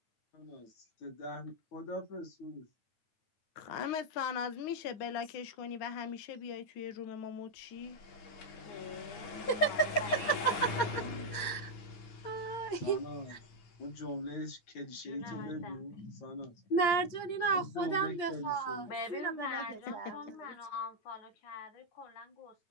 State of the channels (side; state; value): right; late; 8.6 ms